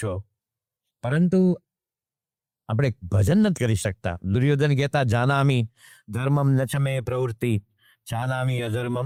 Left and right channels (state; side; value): identical; both; correlation 1.00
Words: પરંતુ આપણે ભજન નથી કરી શકતા. દુર્યોધન કહેતા જાનામી ધર્મમ નચમે પ્રવૃત્તિ, જાનામી